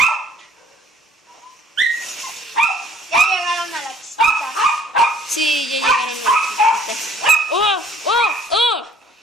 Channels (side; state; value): both; normal; correlation 0.58